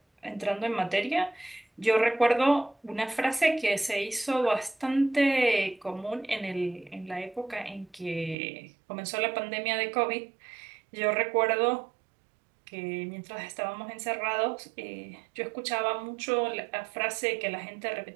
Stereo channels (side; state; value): left; drops out; at 8.3 s